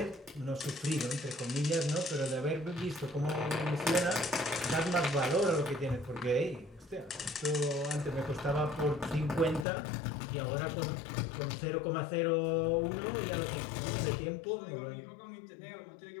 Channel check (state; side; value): drops out; right; at 9.7 s